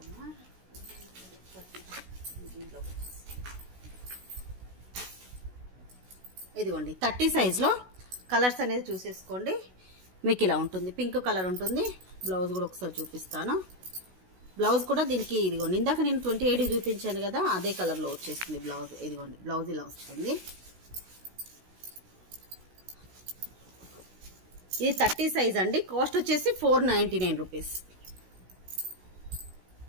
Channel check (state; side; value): late; left; 16 ms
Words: అమ్మా. ఇదిగోండి 30 సైజ్లో కలర్స్ అనేది చూసేసుకోండి. మీకు ఇలా ఉంటుంది, పింక్ కలర్ ఉంటుంది. బ్లౌజ్ కూడా ఒకసారి చూపిస్తాను. బ్లౌజ్ కూడా దీనికి ఇదిగోండి ఇందాక నేను 28 చూపించాను కదా, అదే కలర్లో వచ్చేస్తుంది బ్లౌజ్. ఇదిగోండి బ్లౌజ్ ఇలా వస్తుంది. ఇది 30 సైజ్ అండి. కాస్ట్ వచ్చేసి 499 రూపీస్.